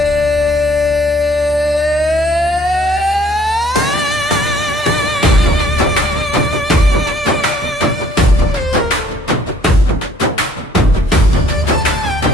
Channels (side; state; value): both; normal; correlation 0.59